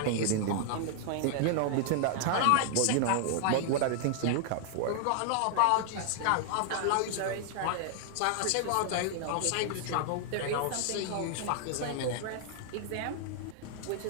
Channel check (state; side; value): different; both; correlation 0.00